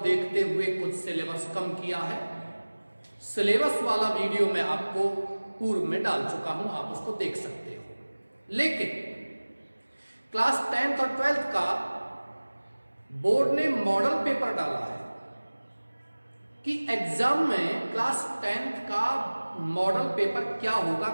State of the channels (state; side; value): inverted; both; correlation -1.00